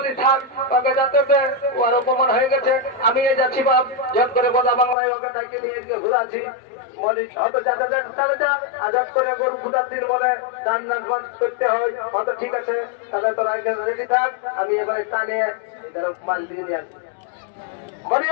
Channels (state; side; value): drops out; right; at 5.0 s